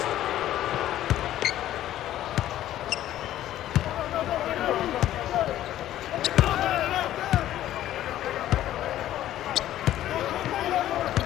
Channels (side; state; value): right; quieter; 13.0 dB